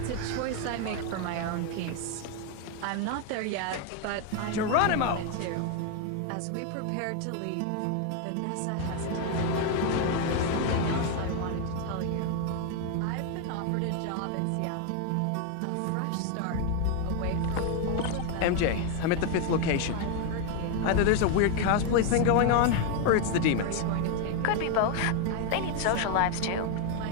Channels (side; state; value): both; different; correlation 0.01